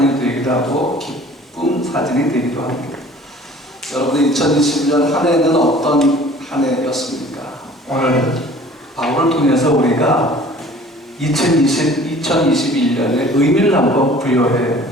되기도 하고 기쁜 사진이 되기도 합니다. 여러분, 2021년 한 해는 어떤 한 해였습니까? 오늘 바울을 통해서 우리가 2021년의 의미를 한번 부여해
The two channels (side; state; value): both; normal; correlation 0.49